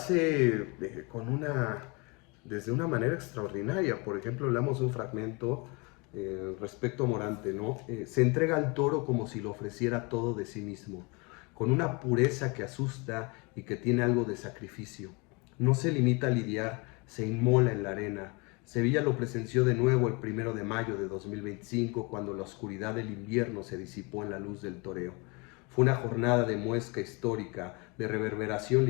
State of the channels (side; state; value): right; quieter; 29.4 dB